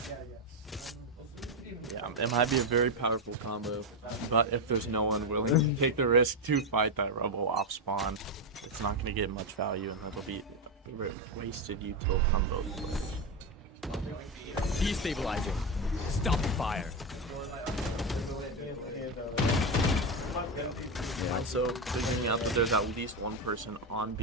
Yeah, it might be a very powerful combo, but if there's no one willing to take the risk to fight that Rebel off spawn, it's not going to get much value, and that'll be wasted util from both players. Destabilizing. Stop fire. Yeah, so figuring out that there's at least one person on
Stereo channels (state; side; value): normal; both; correlation 0.09